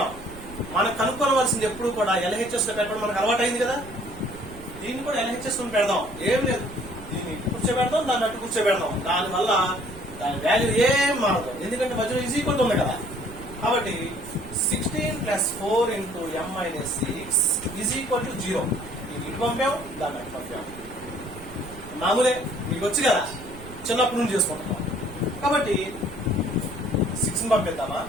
మనం కనుక్కోవలసింది ఎప్పుడు కూడా LHS లో పెట్టడం మనకు అలవాటు అయింది కదా. దీన్ని కూడా LHS లో పెడదాం. ఏం లేదు, దీన్ని కూర్చోబెడదాం, దాన్ని అట్టు కూర్చోబెడదాం. దానివల్ల దాని వాల్యూ ఏం మారదు, ఎందుకంటే మధ్యలో ఈజ్ ఈక్వల్ ఉంది కదా. కాబట్టి 16 plus 4 into m minus 6 is equal to 0. ఇది ఇటు పంపాం, దాన్ని అటు పంపాం. మామూలే, మీకు వచ్చి కదా, చిన్నప్పటి నుంచి చేసుకుంటున్నాం. కాబట్టి 6 పంపిద్దామా,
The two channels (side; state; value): right; noise; rumble, 16 dB below the sound